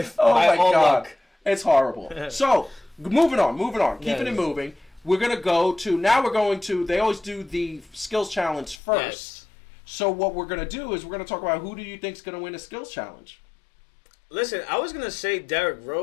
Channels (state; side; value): drops out; right; at 8.8 s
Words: my all God. luck. It's horrible. So, moving on. Keeping it moving. We're going to they always do the skills challenge first. Yes. So what we're going to do is we're going to talk about who do you think is going to win a skills challenge. Listen, I was going to say Derrick